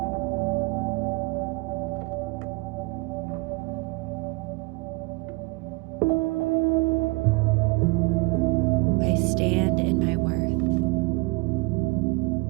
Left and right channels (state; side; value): quieter; left; 26.6 dB